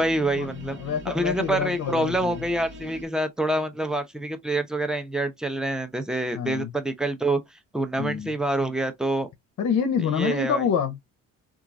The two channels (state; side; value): normal; both; correlation 0.59